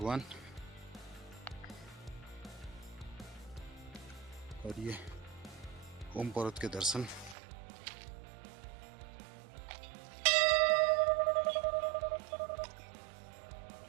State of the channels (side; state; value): left; drops out; at 7.4 s